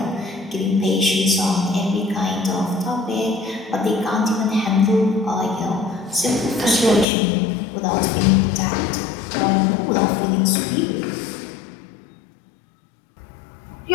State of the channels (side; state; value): right; drops out; at 7.1 s